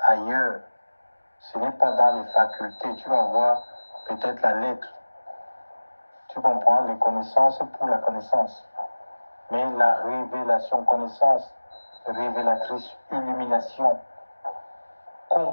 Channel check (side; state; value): both; inverted; correlation -1.00